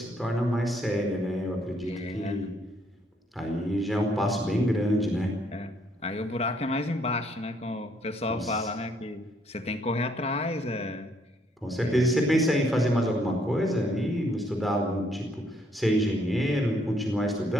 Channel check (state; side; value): normal; both; correlation 0.68